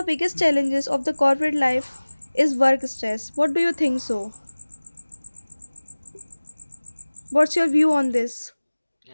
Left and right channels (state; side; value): inverted; both; correlation -1.00